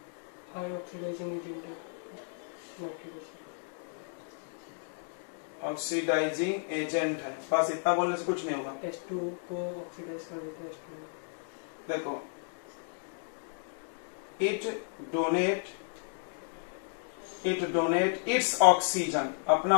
ऑक्सीडाइजिंग एजेंट है, बस इतना बोलने से कुछ नहीं होगा। H2 को ऑक्सीडाइज कर देते हैं H2। देखो, इट डोनेट इट्स ऑक्सीजन, अपना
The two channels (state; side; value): silent; right; 56 dB below the other